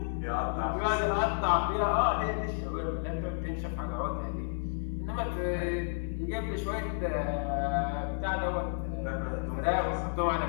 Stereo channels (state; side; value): silent; right; digital silence